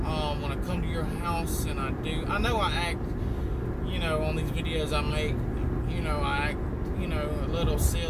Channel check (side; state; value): both; identical; correlation 1.00